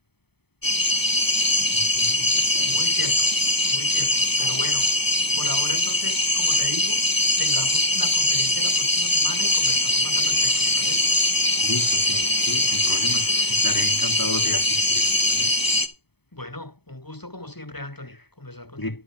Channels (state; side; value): late; right; 0.98 ms